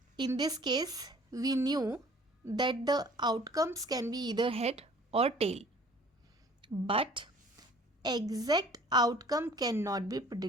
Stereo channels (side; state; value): both; normal; correlation 0.52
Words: In this case, we knew that the outcomes can be either head or tail, but exact outcome cannot be